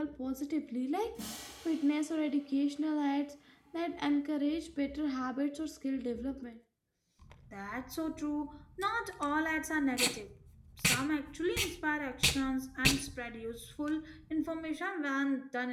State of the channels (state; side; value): identical; both; correlation 1.00